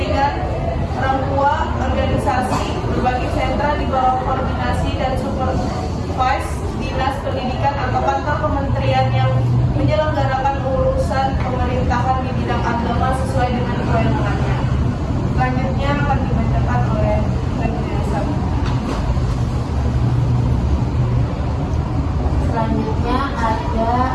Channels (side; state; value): both; identical; correlation 1.00